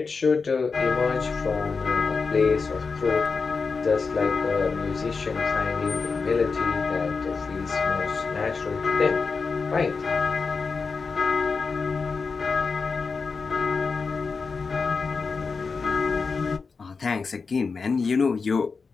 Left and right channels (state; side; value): quieter; right; 4.8 dB